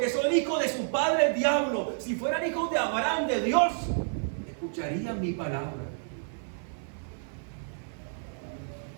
son hijos de su padre el diablo. Si fueran hijos de Abraham, de Dios, escucharían mi palabra.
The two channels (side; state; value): left; silent; 58 dB below the other